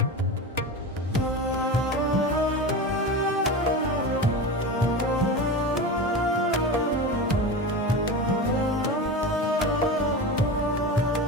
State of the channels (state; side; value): normal; both; correlation 0.26